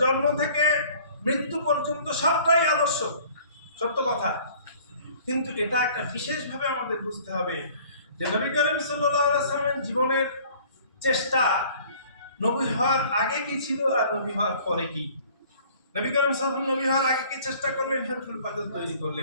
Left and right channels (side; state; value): both; inverted; correlation -0.53